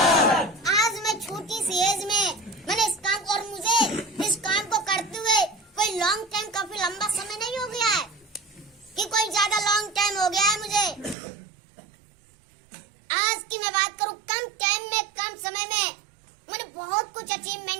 आज मैं छोटी सी एज में मैंने इस काम को, और मुझे इस काम को करते हुए कोई लॉन्ग टाइम, काफी लंबा समय नहीं हो गया है कि कोई ज्यादा लॉन्ग टाइम हो गया है मुझे। आज की मैं बात करूं, कम टाइम में, कम समय में मैंने बहुत कुछ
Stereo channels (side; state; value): left; drops out; at 11.2 s